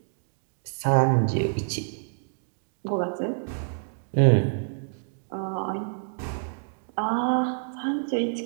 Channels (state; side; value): silent; left; digital silence